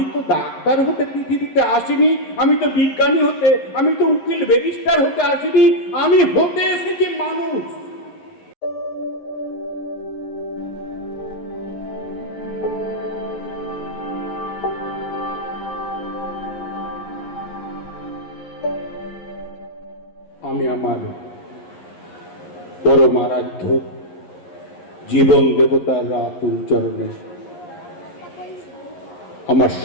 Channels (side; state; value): right; late; 11 ms